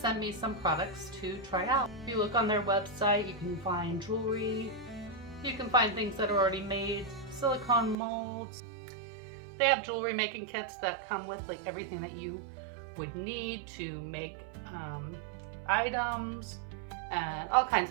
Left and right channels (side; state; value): left; drops out; at 8.0 s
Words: me some products to try out. If you look on their website, you can find jewelry, you can find things that are already made, silicone molds. They have jewelry making kits that come with like everything that you would need to make items and all kinds